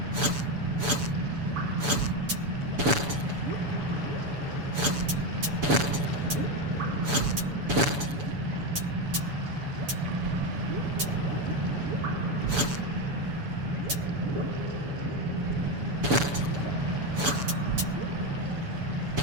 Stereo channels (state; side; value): late; left; 7.0 ms